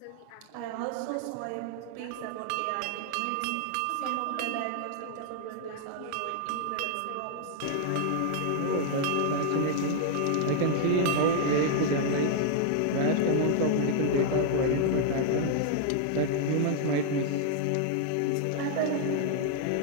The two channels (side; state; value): both; different; correlation -0.01